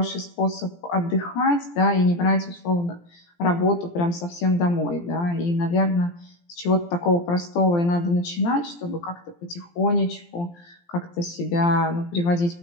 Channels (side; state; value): right; late; 17 ms